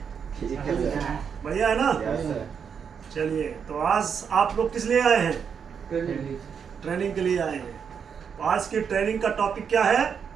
ठीक है सर। बढ़िया है ना? Yes sir. चलिए, तो आज आप लोग किस लिए आए हैं? ट्रेनिंग के लिए आए हैं। तो आज की ट्रेनिंग का टॉपिक क्या है?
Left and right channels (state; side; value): quieter; left; 6.9 dB